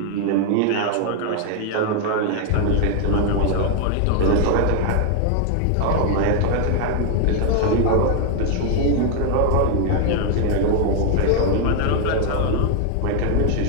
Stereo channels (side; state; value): both; different; correlation 0.00